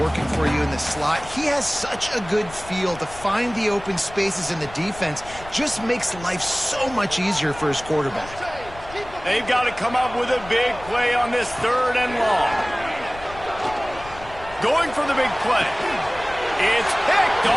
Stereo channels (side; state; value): left; noise; rumble, 17 dB below the sound